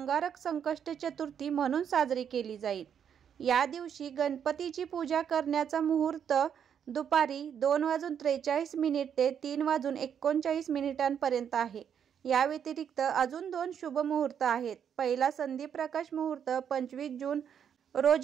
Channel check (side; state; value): left; quieter; 8.3 dB